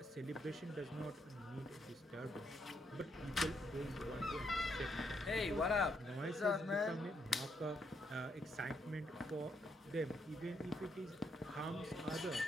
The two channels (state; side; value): normal; both; correlation 0.76